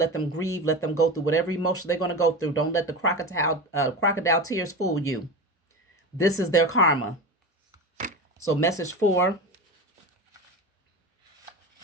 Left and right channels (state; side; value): normal; both; correlation 0.25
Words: them grieve, let them go through whatever emotion they're going to go through. Don't let the crocodile tears fool you. This is their karma. So message 4.